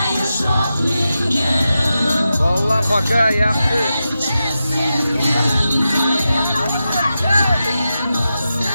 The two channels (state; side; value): inverted; both; correlation -0.90